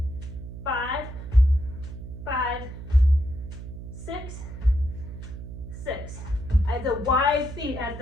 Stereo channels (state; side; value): noise; right; hum, 10 dB below the sound